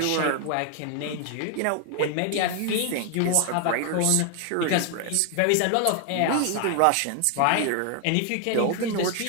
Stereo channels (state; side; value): different; both; correlation 0.00